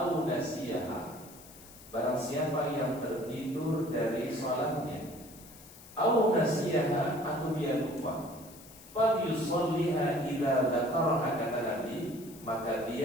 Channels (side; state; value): left; noise; hiss, 20 dB below the sound